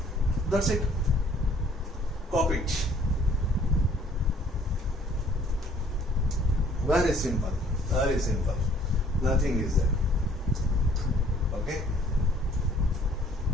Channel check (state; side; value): normal; both; correlation 0.58